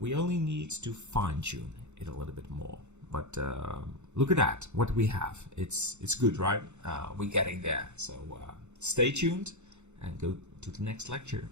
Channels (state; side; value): late; left; 0.83 ms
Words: only need to fine-tune it a little bit more. But look at that, what we have. It's good, right? We're getting there. So stay tuned and go to the next lecture.